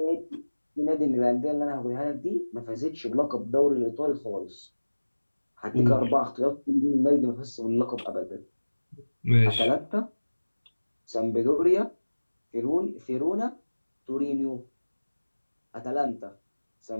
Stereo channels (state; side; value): inverted; both; correlation -1.00